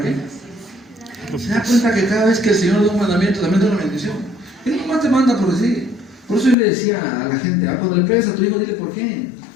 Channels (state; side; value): drops out; right; at 6.6 s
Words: qué? Se da cuenta que cada vez que el Señor da un mandamiento, también da una bendición. Él nomás te manda por decir. Por eso yo le decía a la gente, cuando le pegues a tu hijo, dile por qué.